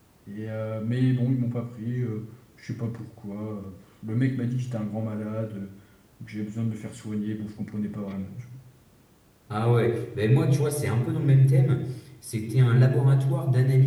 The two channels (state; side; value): identical; both; correlation 1.00